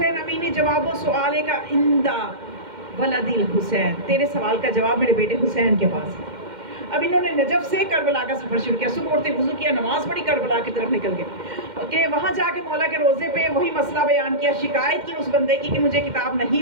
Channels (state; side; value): late; left; 2.1 ms